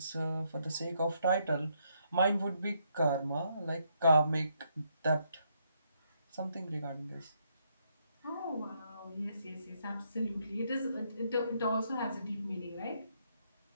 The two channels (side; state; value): both; inverted; correlation -0.74